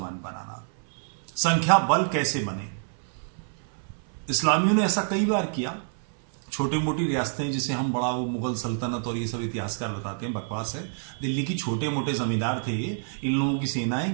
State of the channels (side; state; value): left; silent; 57 dB below the other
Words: बनाना। संख्या बल कैसे बने? इस्लामियों ने ऐसा कई बार किया। छोटी मोटी रियासतें, जिसे हम बड़ा वो मुगल सल्तनत और ये सब इतिहासकार बताते हैं, बकवास है। दिल्ली की छोटे मोटे जमींदार थे, इन लोगों की सेनाएं